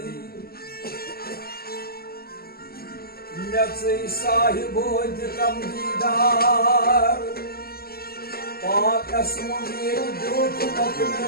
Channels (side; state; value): right; late; 0.44 ms